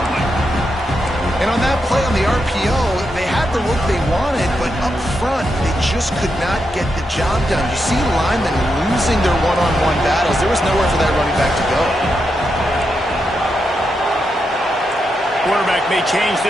one. And on that play on the RPO, they had the look they wanted, but up front, they just could not get the job done. You see linemen losing their one-on-one battles. There was nowhere for that running back to go. Quarterback may change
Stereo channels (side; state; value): both; normal; correlation 0.84